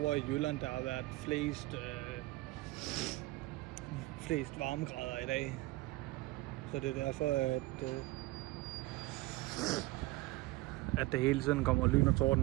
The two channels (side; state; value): left; quieter; 19.8 dB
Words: i Jylland, der har været flest varmegrader i dag. Så det er derfor, at det hele tiden kommer lyn og